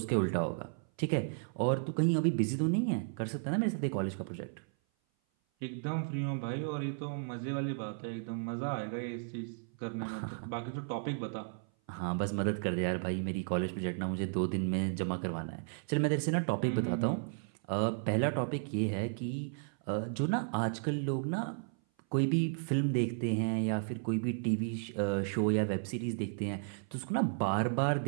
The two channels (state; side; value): silent; left; 55 dB below the other